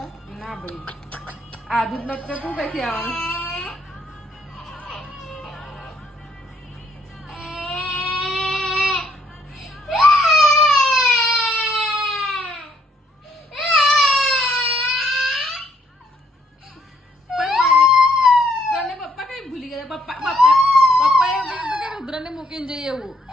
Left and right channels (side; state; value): both; normal; correlation 0.70